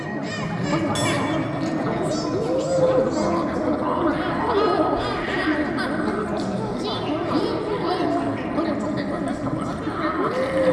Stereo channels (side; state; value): both; identical; correlation 1.00